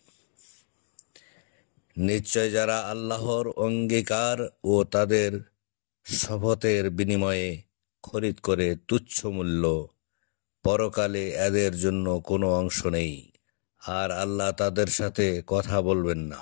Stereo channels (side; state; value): right; silent; digital silence